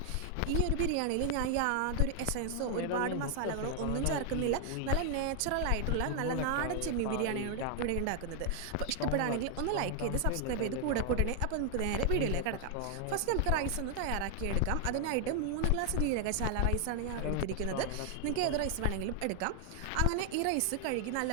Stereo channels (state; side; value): different; both; correlation 0.00